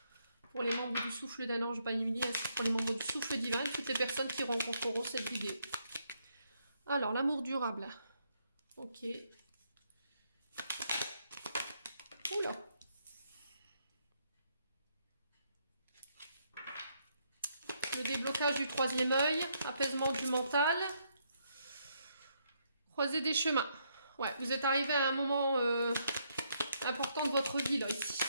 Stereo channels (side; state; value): both; inverted; correlation -0.74